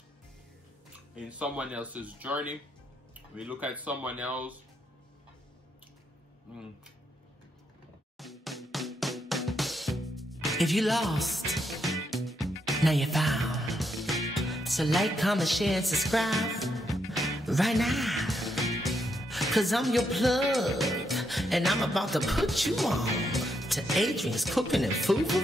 in someone else's journey. We look at someone else. If you lost, now you're found. So like, comment, share, and subscribe right now. Cause I'm your plug, and I'm about to put you on to Adrian's Cooking and Food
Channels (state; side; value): normal; both; correlation 0.79